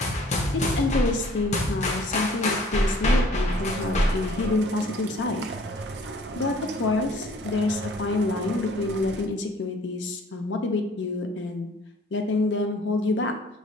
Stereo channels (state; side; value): normal; both; correlation 0.54